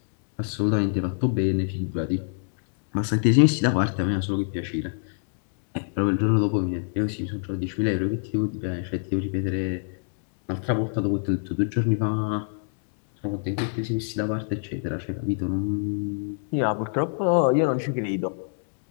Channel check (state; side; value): silent; right; digital silence